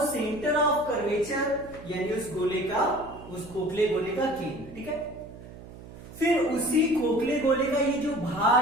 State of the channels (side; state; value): right; noise; hum, 16 dB below the sound